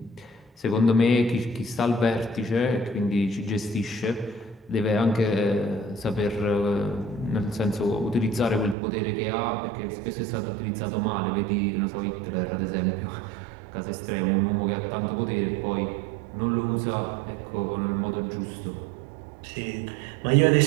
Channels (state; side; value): drops out; left; at 8.8 s